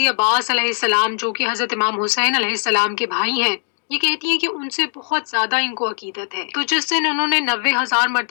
عباس علیہ السلام جو کہ حضرت امام حسین علیہ السلام کے بھائی ہیں، یہ کہتی ہیں کہ ان سے بہت زیادہ ان کو عقیدت ہے۔ تو جس دن انہوں نے 90,000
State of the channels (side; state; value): right; silent; 66 dB below the other